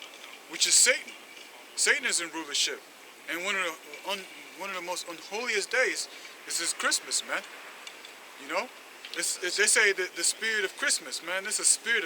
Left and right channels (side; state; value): both; identical; correlation 1.00